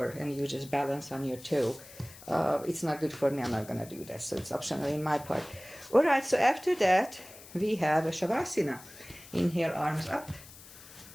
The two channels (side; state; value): left; noise; hiss, 18 dB below the sound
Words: and you just balance on your toe. It's not good for me, I'm not going to do that, so it's optional in my part. Alright, so after that, we have a Shavasana. Inhale, arms up.